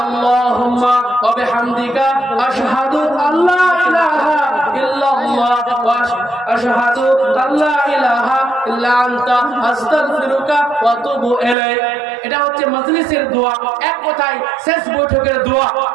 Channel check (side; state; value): left; drops out; at 11.6 s